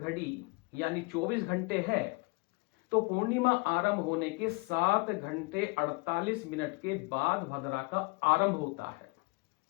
यानी 24 घंटे है तो पूर्णिमा आरंभ होने के 7 घंटे 48 मिनट के बाद भद्रा का आरंभ होता है,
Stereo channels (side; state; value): right; quieter; 28.6 dB